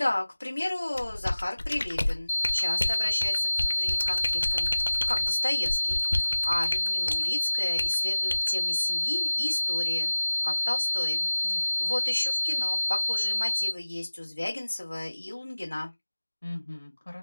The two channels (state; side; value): inverted; both; correlation -1.00